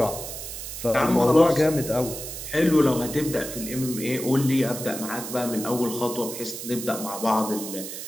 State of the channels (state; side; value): noise; right; hiss, 8 dB below the sound